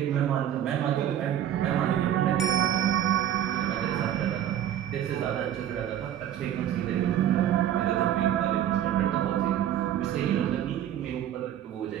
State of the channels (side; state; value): left; quieter; 10.9 dB